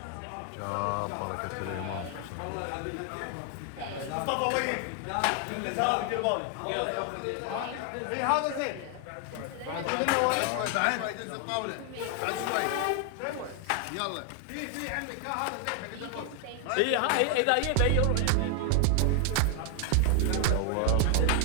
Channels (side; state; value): both; different; correlation 0.00